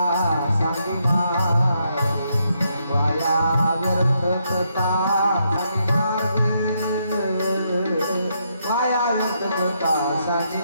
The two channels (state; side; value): inverted; both; correlation -0.77